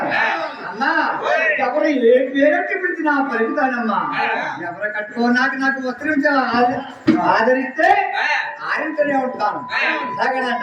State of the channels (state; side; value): identical; both; correlation 1.00